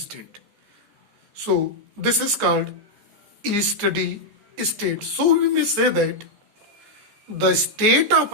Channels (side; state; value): left; late; 14 ms